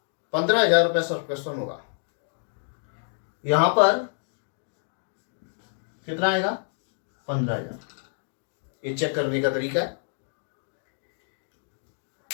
15,000 रुपये सब्सक्रिप्शन होगा। यहां पर कितना आएगा? 15,000। ये चेक करने का तरीका है।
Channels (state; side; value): silent; right; digital silence